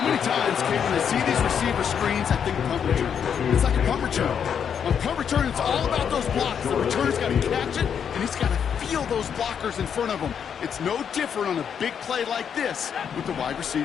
many times, Kate, when I see these receiver screens, I think punt return. It's like a punt return. On punt return, it's all about those blocks. The returner's got to catch it, and he's got to feel those blockers in front of him. It's no different on a big play like this with the wide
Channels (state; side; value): quieter; right; 7.8 dB